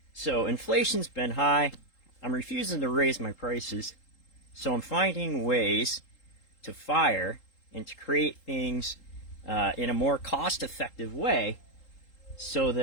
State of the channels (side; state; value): right; late; 3.8 ms